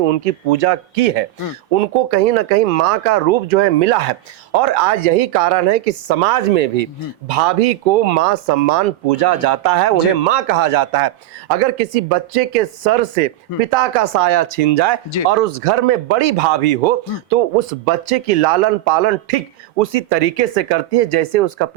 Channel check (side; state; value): left; quieter; 14.8 dB